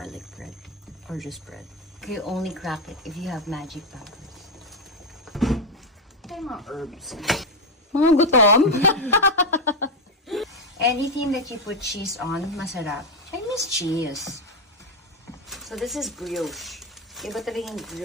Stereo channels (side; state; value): both; normal; correlation 0.07